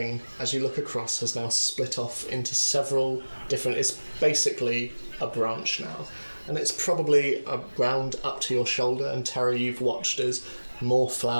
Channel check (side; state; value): both; inverted; correlation -1.00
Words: as you look across, has now split off into several different... It's basically a branch now. And it's probably around up to your shoulder, and Terra, you've watched as more